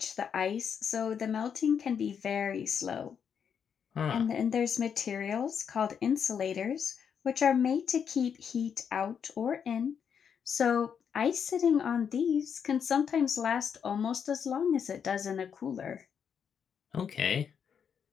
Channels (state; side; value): quieter; right; 7.4 dB